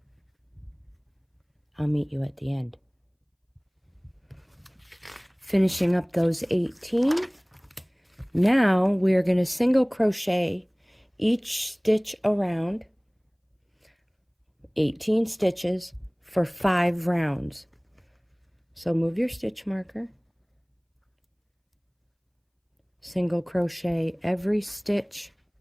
I'll meet you at the end. Finishing up those 18. Now we're going to single crochet each stitch around, 18 stitches for 5 rounds. So move your stitch marker. Single crochet every stitch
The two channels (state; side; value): identical; both; correlation 1.00